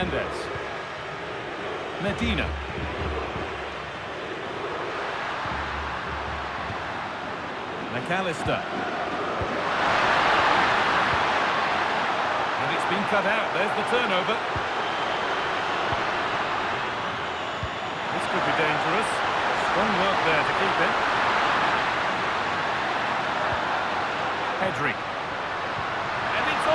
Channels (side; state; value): both; identical; correlation 1.00